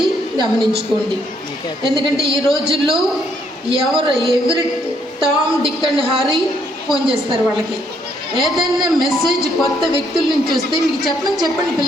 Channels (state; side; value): normal; both; correlation 0.71